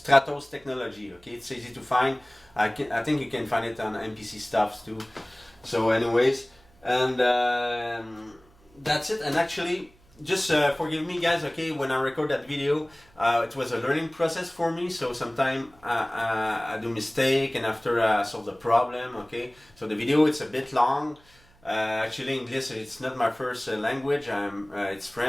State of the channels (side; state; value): right; noise; hum, 29 dB below the sound